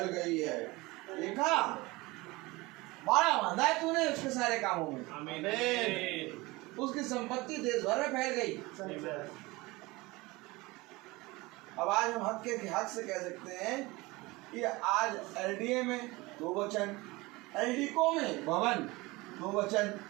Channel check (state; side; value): quieter; left; 22.2 dB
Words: गई है। देखा, बाड़ा बांधा है तूने उसके सारे कामों में। आमीन। उसकी संपत्ति देश भर में फैल गई। अब आज हम हक से कह सकते हैं कि आज एलडीए में 2 वचन, एलडीको में भवन 2 वचन,